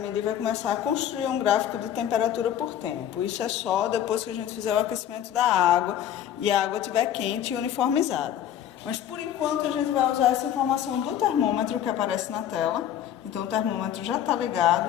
vai começar a construir um gráfico de temperatura por tempo. Isso é só depois que a gente fizer o aquecimento da água e a água estiver quente e uniformizada. Mas por enquanto a gente vai usar essa informação do termômetro que aparece na tela. Então o termômetro já está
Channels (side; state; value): right; quieter; 10.6 dB